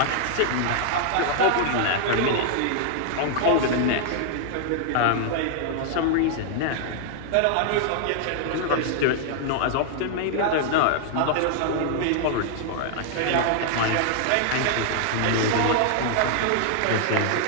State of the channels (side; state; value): both; different; correlation 0.00